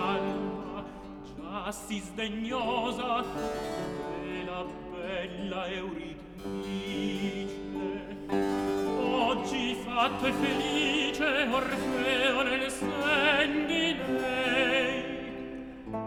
già si sdegnosa della bella Euridice. Oggi fatto e felice Orfeo nel sen di lei,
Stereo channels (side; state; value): both; identical; correlation 1.00